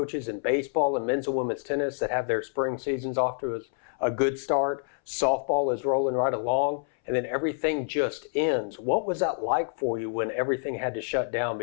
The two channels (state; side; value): silent; right; 60 dB below the other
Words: in baseball and men's and women's tennis that have their spring seasons off to a good start. Softball is rolling right along, and then everything just ends. What was that like for you when everything had to shut down